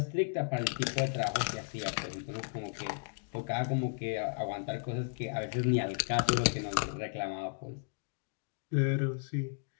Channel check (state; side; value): silent; right; digital silence